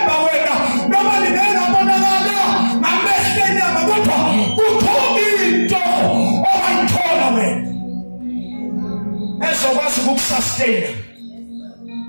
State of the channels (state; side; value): inverted; both; correlation -1.00